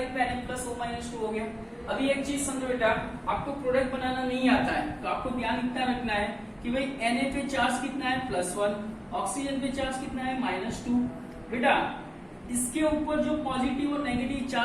पे Na प्लस O-2 हो गया। अभी एक चीज समझो बेटा, आपको प्रोडक्ट बनाना नहीं आता है तो आपको ध्यान इतना रखना है कि भाई Na पे चार्ज कितना है +1, ऑक्सीजन पे चार्ज कितना है -2। बेटा इसके ऊपर जो पॉजिटिव और नेगेटिव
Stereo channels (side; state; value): both; identical; correlation 1.00